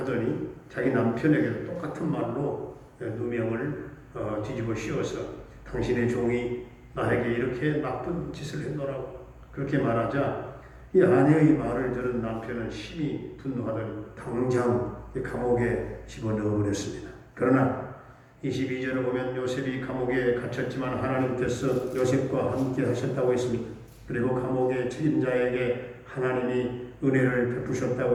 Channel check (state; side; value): identical; both; correlation 1.00